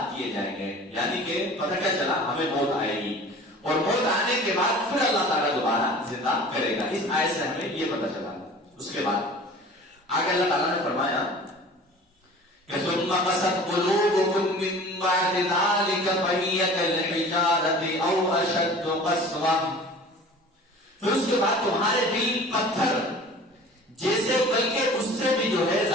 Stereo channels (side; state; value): both; normal; correlation 0.43